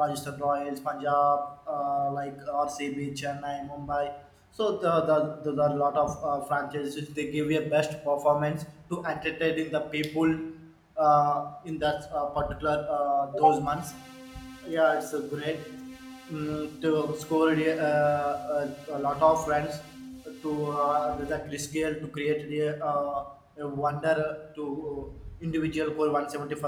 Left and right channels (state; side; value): identical; both; correlation 1.00